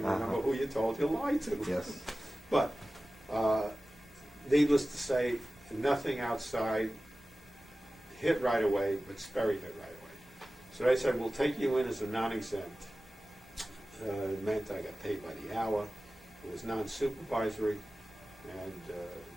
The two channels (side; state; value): both; normal; correlation 0.96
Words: remember who you told you lied to. Yes. But needless to say, nothing outside hit right away, but Sperry hit right away. So they said, we'll take you in as a non-exempt. It meant I got paid by the hour. It was non-supervisory. And